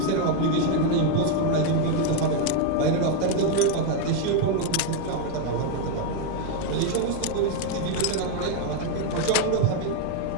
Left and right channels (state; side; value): different; both; correlation 0.01